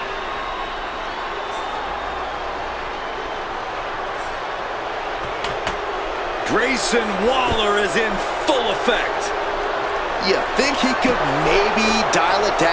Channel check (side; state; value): both; identical; correlation 1.00